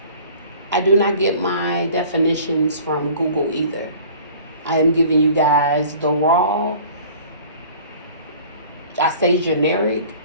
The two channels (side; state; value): both; inverted; correlation -0.47